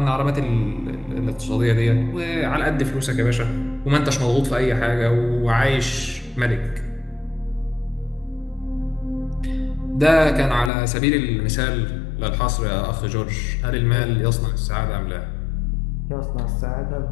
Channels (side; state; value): right; drops out; at 10.7 s